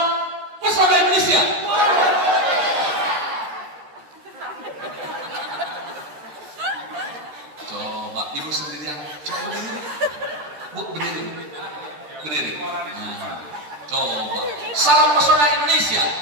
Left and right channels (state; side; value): late; left; 13 ms